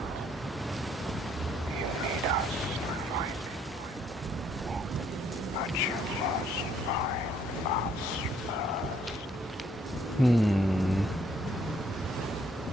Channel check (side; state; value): both; normal; correlation 0.67